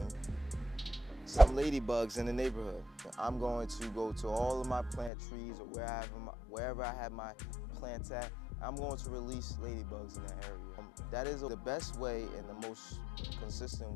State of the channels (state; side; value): drops out; right; at 5.1 s